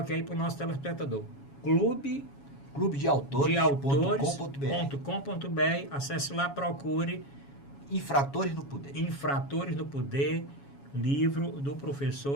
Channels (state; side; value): late; right; 7.2 ms